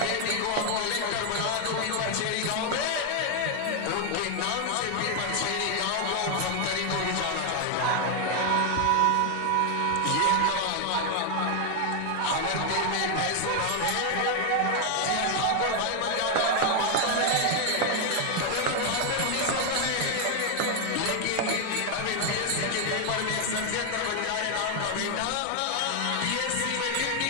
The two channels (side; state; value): both; different; correlation 0.00